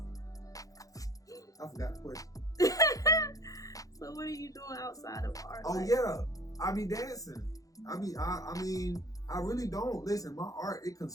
I forgot the question. So what are you doing outside of art? Oh yeah, I be dancing. I mean, I really don't. Listen, my art, it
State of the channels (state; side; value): late; right; 0.17 ms